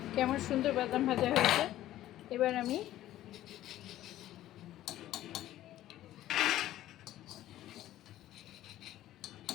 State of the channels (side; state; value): right; quieter; 13.9 dB